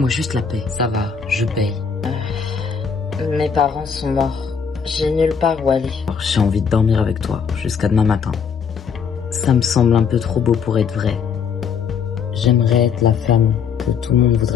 juste la paix. Ça va, je paye. Mes parents sont morts. J'ai nulle part où aller. Alors, j'ai envie de dormir avec toi jusqu'à demain matin. Ça me semble un peu trop beau pour être vrai. J'aimerais être la femme que tout le monde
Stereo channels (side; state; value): right; quieter; 6.4 dB